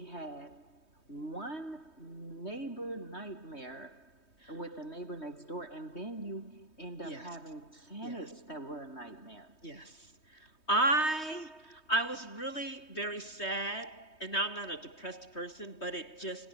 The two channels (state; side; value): late; right; 3.2 ms